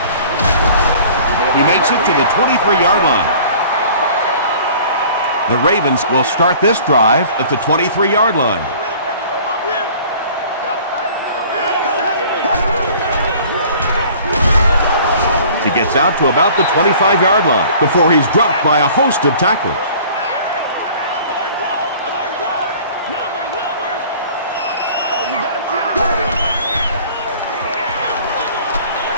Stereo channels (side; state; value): both; inverted; correlation -0.49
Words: He makes it to the 23-yard line. The Ravens will start this drive at the 23-yard line. He gets out to about the 25-yard line before he's dropped by a host of tacklers.